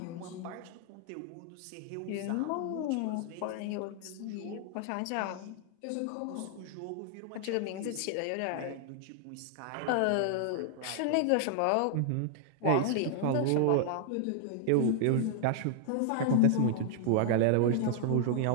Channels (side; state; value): both; different; correlation 0.00